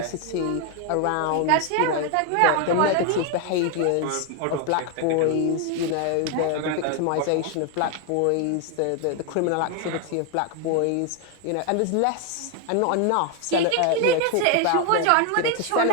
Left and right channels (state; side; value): different; both; correlation 0.01